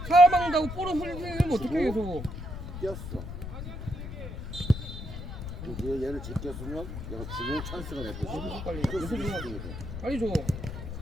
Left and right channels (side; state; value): left; noise; rumble, 8 dB below the sound